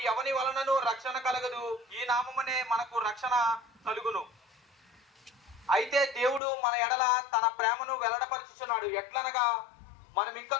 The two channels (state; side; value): drops out; right; at 6.4 s